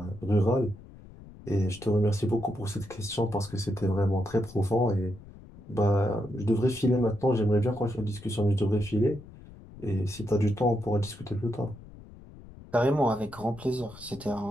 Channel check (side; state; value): left; noise; rumble, 19 dB below the sound